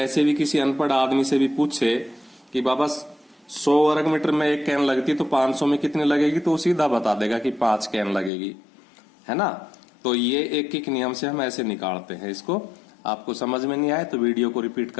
भी किसी अनपढ़ आदमी से भी पूछे कि बाबा 100 वर्ग मीटर में एक कैन लगती है तो 500 में कितनी लगेगी, तो वो सीधा बता देगा कि 5 कैन लगेगी, है ना। तो ये एक एक नियम से हम ऐसे निकालते हैं इसको। आपको समझ में नहीं आए तो वीडियो को रिपीट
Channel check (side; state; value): right; drops out; at 8.3 s